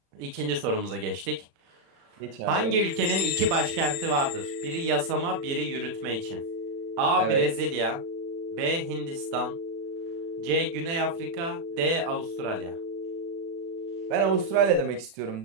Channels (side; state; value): left; late; 36 ms